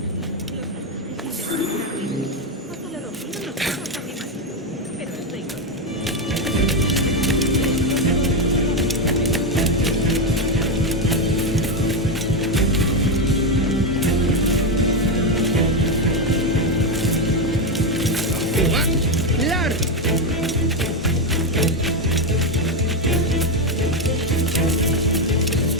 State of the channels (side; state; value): both; normal; correlation 0.08